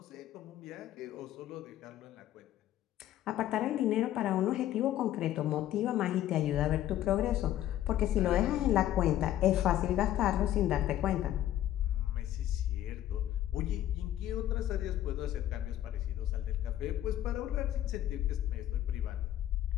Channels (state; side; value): quieter; right; 12.7 dB